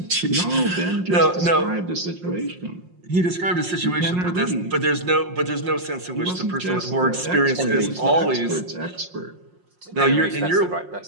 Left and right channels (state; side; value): late; left; 5.6 ms